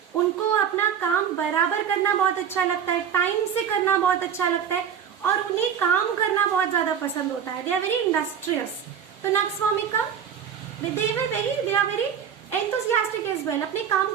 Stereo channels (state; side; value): quieter; left; 8.1 dB